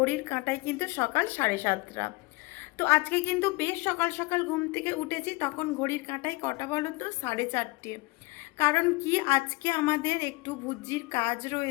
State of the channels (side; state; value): right; quieter; 24.3 dB